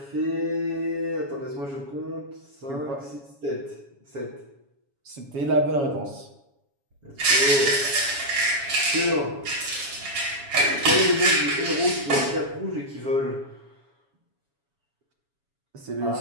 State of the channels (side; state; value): left; late; 7.2 ms